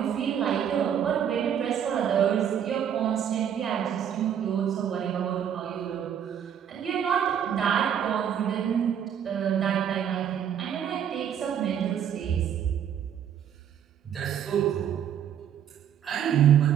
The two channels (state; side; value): quieter; left; 9.0 dB